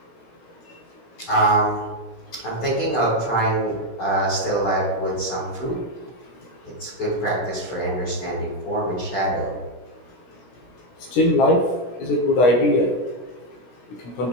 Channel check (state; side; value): late; right; 17 ms